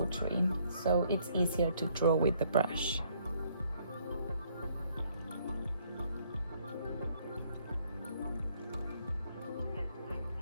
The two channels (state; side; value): inverted; both; correlation -0.67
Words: so it's easier to draw with the brush.